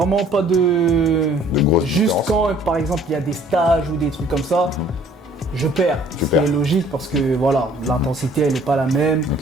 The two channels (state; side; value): normal; both; correlation 0.57